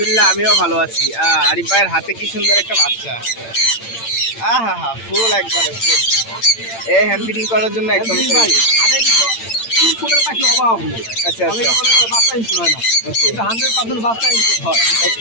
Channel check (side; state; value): right; late; 8.8 ms